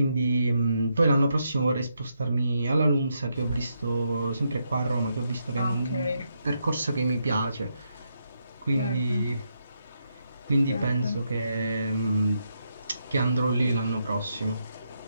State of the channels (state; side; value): inverted; both; correlation -0.81